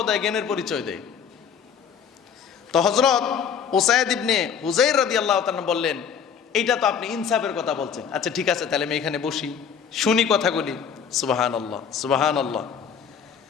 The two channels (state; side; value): quieter; right; 7.3 dB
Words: জ্ঞানের পরিচয় দেয়। তো হযরত উসাইদ ইবনে হুযাইর রাদিয়াল্লাহু তাআলা বললেন, এইটা তো আপনি ইনসাফের কথা বলছেন, আচ্ছা ঠিক আছে, তাহলে আমি এখানে বসি, শুনি কথাগুলি। সুবহানাল্লাহ, সুবহানাল্লাহ।